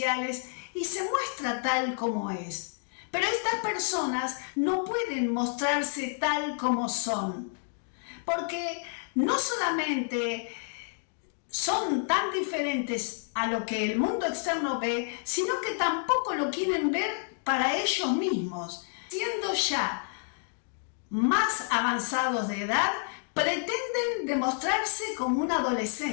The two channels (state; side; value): silent; right; 58 dB below the other